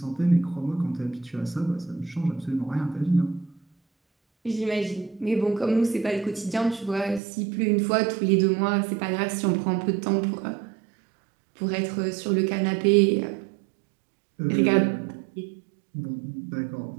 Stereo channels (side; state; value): left; drops out; at 7.2 s